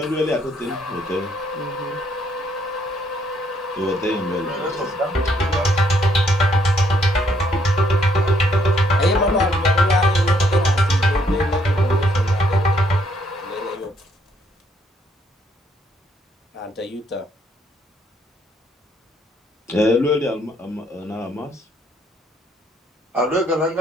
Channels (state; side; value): normal; both; correlation 0.70